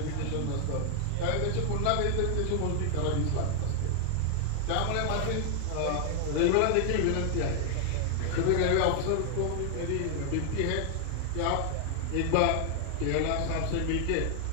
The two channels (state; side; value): different; both; correlation 0.00